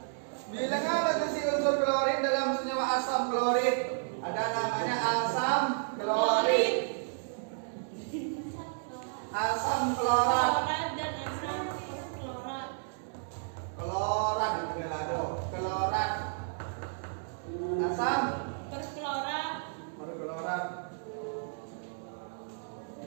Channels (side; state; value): left; silent; digital silence